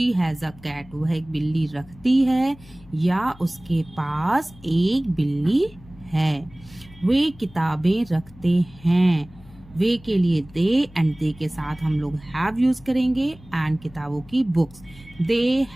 has a cat. वह एक बिल्ली रखती है या उसके पास एक बिल्ली है। वे किताबें रखते हैं। वे के लिए दे, एंड दे के साथ हम लोग हैव यूज करेंगे, एंड किताबों की बुक्स, दे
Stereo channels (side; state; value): left; noise; hum, 22 dB below the sound